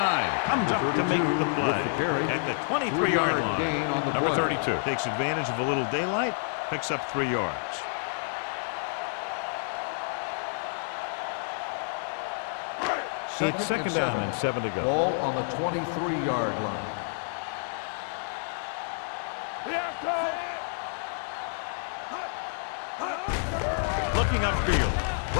comes up to make the play at the 23-yard line. Number 32 takes advantage of a little daylight, picks up 3 yards. It's 2nd down and 7 to go. Ball on the 23-yard line. Looking upfield,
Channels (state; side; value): silent; right; digital silence